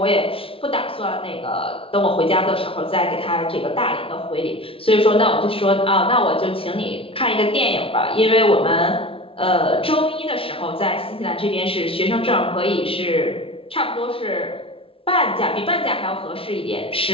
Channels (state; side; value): late; right; 0.26 ms